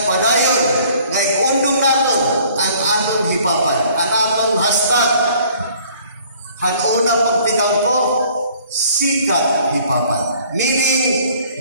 padayon nga ikundong naton ang atong hipapan, ang atong hashtag. Hanuna pagtigang ko, sikat hipapan. Meaning,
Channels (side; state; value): both; inverted; correlation -0.56